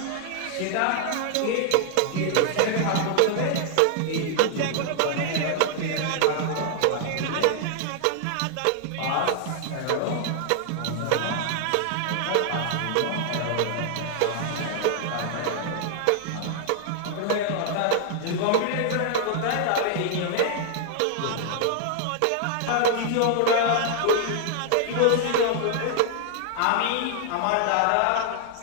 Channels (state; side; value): different; both; correlation 0.00